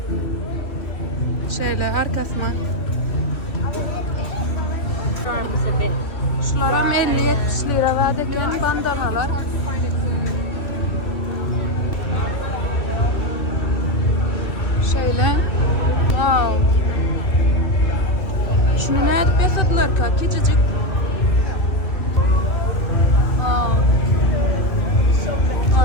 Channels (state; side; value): late; right; 2.8 ms